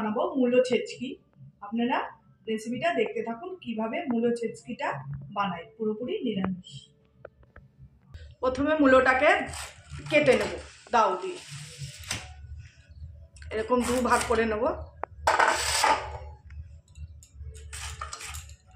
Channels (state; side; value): identical; both; correlation 1.00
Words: মূলো ছেচকি। আপনারা রেসিপিটা দেখতে থাকুন কিভাবে মূলো ছেচকিটা বানাই, পুরোপুরি নিরামিষ। প্রথমে মূলোটাকে কেটে নেব দাও দিয়ে, এরকম দু ভাগ করে নেব।